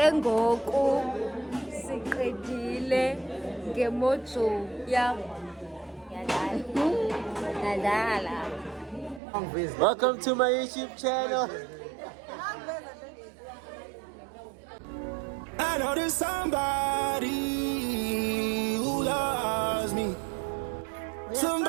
ngoku. Siqedile ngemojo yam. Yadala. Welcome to my YouTube channel. I know there's somebody who loves me.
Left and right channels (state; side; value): drops out; left; at 9.2 s